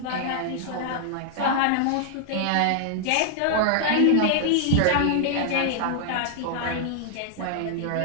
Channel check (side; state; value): both; different; correlation -0.01